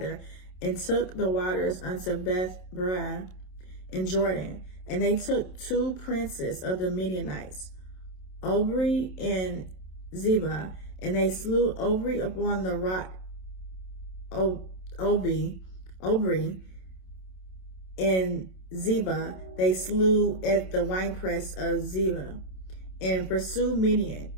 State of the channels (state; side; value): late; right; 27 ms